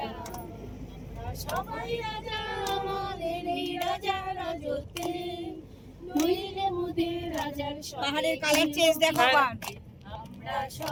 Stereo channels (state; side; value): identical; both; correlation 1.00